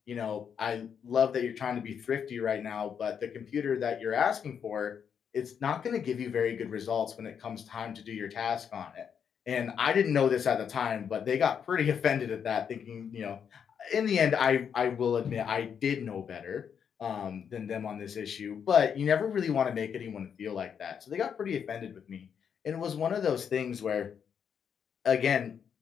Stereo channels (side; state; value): right; quieter; 7.5 dB